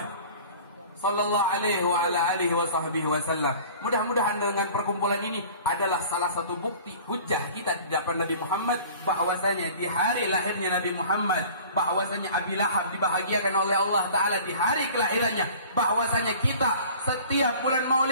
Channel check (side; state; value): both; inverted; correlation -0.45